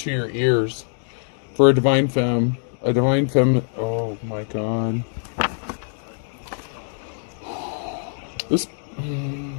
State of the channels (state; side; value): silent; right; digital silence